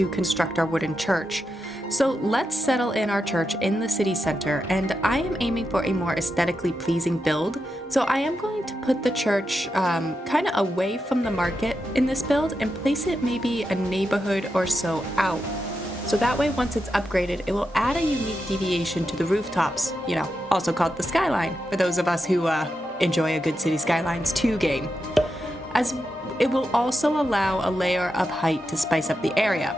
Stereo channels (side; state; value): both; normal; correlation 0.87